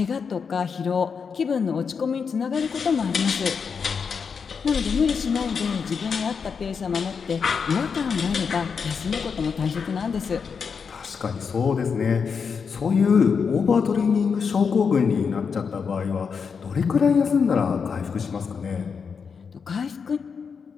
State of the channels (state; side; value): quieter; right; 6.0 dB